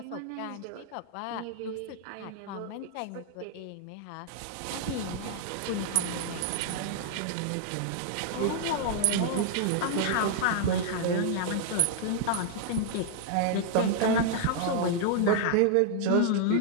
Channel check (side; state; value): both; different; correlation -0.01